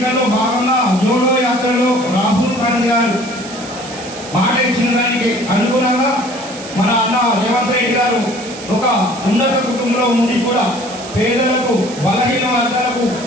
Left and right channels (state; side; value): noise; right; hiss, 14 dB below the sound